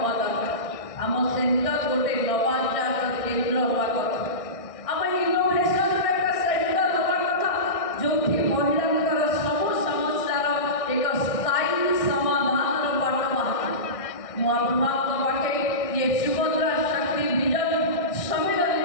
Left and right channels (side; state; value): right; late; 1.6 ms